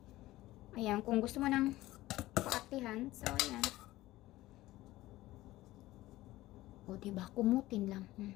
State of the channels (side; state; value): right; quieter; 17.0 dB